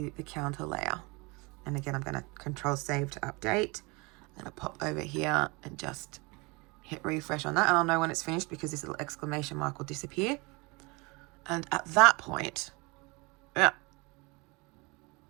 the counter layer. And again, I'm going to Control Save to update. I'm going to pop over here and just hit refresh on that, and I'll know when it's finished because this little exclamation mark will disappear. And at that point,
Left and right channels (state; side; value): quieter; left; 27.1 dB